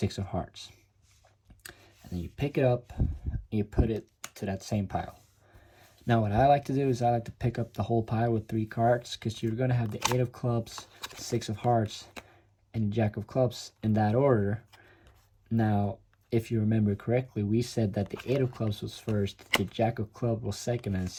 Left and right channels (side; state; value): both; identical; correlation 1.00